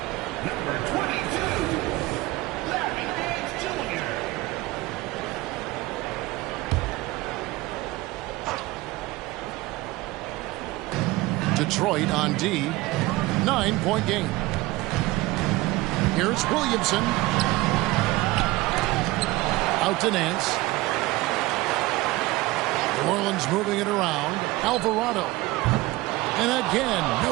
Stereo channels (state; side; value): quieter; left; 19.7 dB